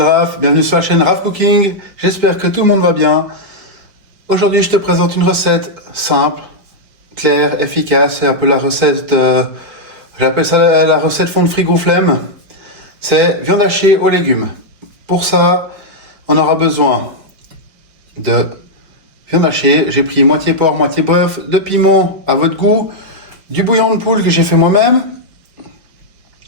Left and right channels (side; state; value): left; late; 5.2 ms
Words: bienvenue sur la chaîne Raph Cooking, j'espère que tout le monde va bien. Aujourd'hui je te présente une recette simple, claire, efficace, c'est un peu la recette, j'appelle ça la recette fond de frigo flemme. C'est viande hachée aux légumes. Pour ça, on aura besoin de viande hachée, j'ai pris moitié porc, moitié bœuf, de piment à votre goût, du bouillon de poule que j'ai fait moi-même,